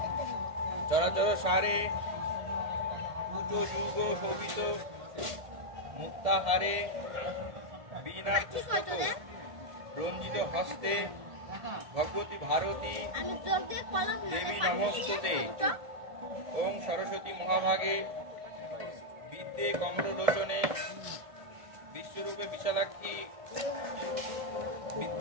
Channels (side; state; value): left; late; 1.5 ms